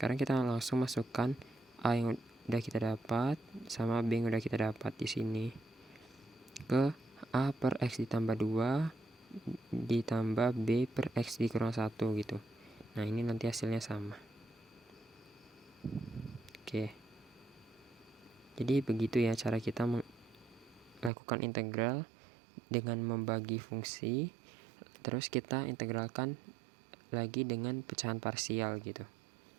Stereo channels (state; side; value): drops out; left; at 21.1 s